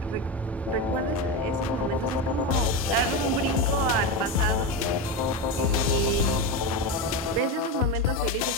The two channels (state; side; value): normal; both; correlation 0.17